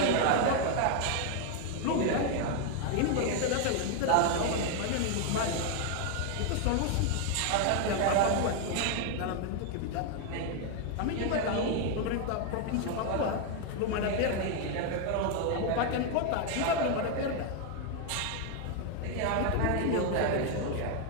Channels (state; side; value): different; both; correlation 0.01